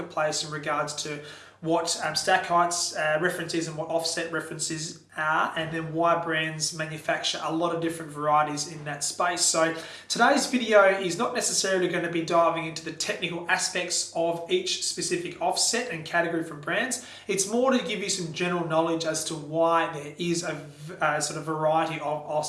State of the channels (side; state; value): both; identical; correlation 1.00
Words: in regards to what stack heights reference is and what offset references are, and then why brands manufacture a lot of different varieties in that space. So today's video is not necessarily going to be diving into the technical aspects of each specific offset and category from brands. It's more to give you some general knowledge as to why there is a sort of variety of